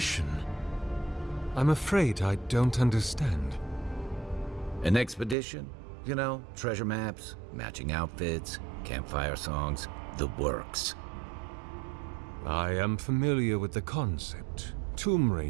I'm afraid I don't understand. An expedition? You know, treasure maps, matching outfits, campfire songs, the works. I am familiar with the concept, tomb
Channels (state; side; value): drops out; left; at 5.4 s